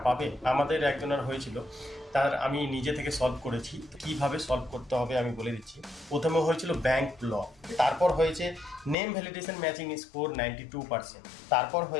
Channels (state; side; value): drops out; right; at 9.0 s